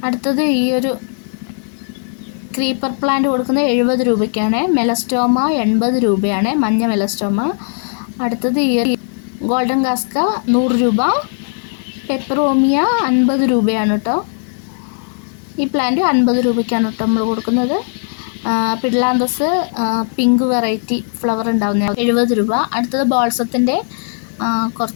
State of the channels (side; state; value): right; silent; digital silence